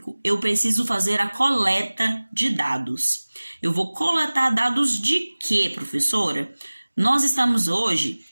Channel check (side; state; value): both; inverted; correlation -1.00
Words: eu preciso fazer a coleta de dados. Eu vou coletar dados de quê, professora? Nós